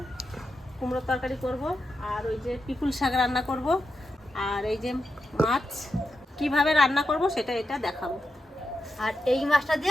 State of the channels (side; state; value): both; normal; correlation 0.87